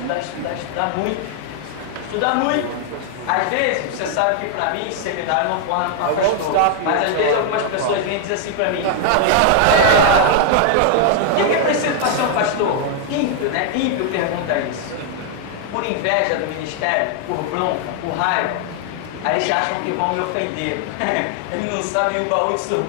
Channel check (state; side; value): different; both; correlation 0.00